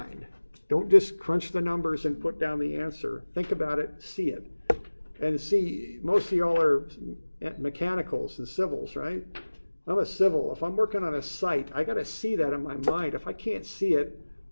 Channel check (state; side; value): inverted; both; correlation -1.00